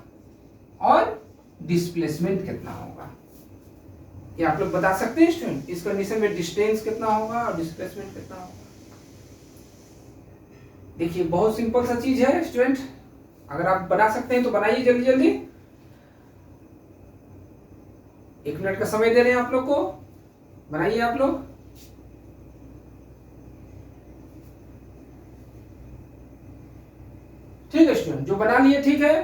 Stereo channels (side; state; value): both; identical; correlation 1.00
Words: और डिस्प्लेसमेंट कितना होगा। क्या आप लोग बता सकते हैं स्टूडेंट, इस कंडीशन में डिस्टेंस कितना होगा और डिस्प्लेसमेंट कितना होगा। देखिए बहुत सिंपल सा चीज है स्टूडेंट, अगर आप बना सकते हैं तो बनाइए जल्दी जल्दी। 1 मिनट का समय दे रहे हैं आप लोग को, बनाइए आप लोग। ठीक है स्टूडेंट, जो बना लिए ठीक